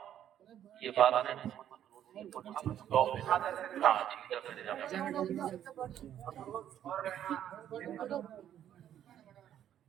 یہ بات ہے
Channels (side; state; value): left; quieter; 10.6 dB